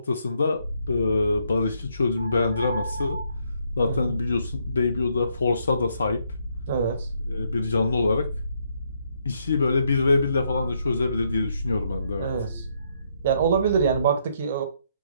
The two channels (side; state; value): both; inverted; correlation -0.74